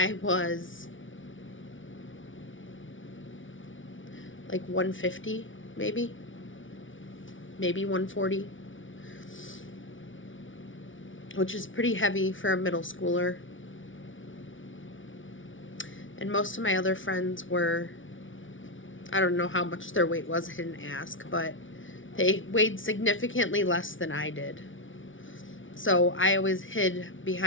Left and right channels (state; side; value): late; right; 0.57 ms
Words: was like 150, maybe 140, which is pretty heavy for a middle schooler. And most of my other friends were, I don't know how much their weight was, I didn't ask, but they weighed significantly less than I did. So I always hid